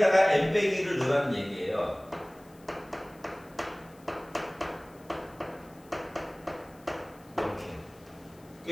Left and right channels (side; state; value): left; noise; hiss, 27 dB below the sound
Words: n 빼기 1을 넣으라는 얘기예요. 이렇게.